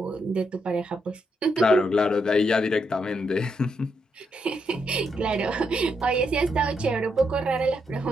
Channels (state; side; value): normal; both; correlation 0.79